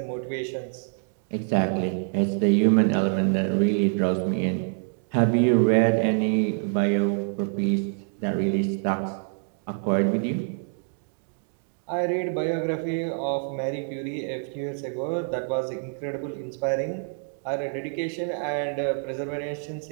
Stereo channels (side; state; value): left; silent; 60 dB below the other